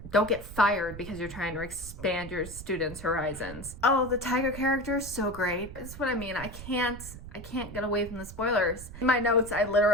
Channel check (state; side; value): noise; right; rumble, 13 dB below the sound